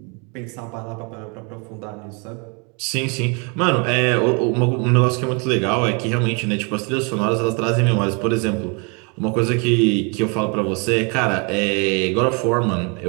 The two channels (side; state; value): left; quieter; 33.6 dB